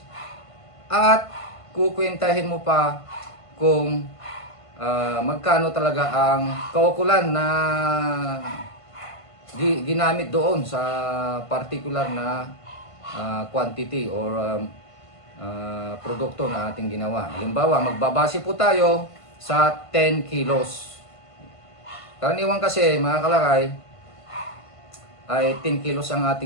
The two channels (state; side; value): late; right; 1.5 ms